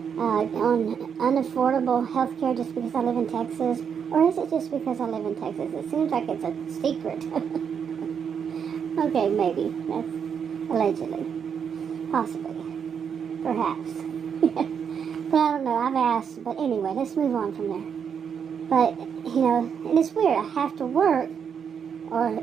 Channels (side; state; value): left; quieter; 7.3 dB